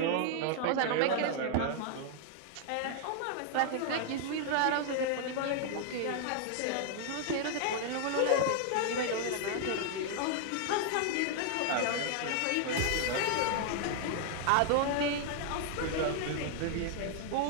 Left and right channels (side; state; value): both; different; correlation 0.00